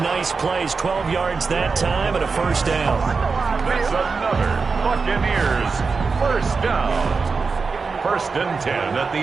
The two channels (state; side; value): quieter; left; 4.7 dB